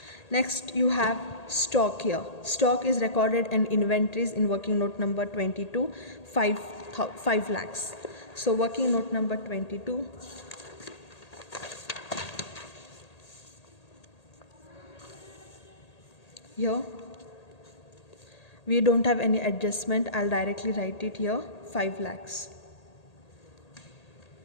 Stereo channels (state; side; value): late; right; 1.8 ms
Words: Next you have stock here. Stock is recorded in inventories in working note number 22, 5 lakhs. So working note number 22. Here we don't have any adjustment. I'll directly write it here, 5 lakhs.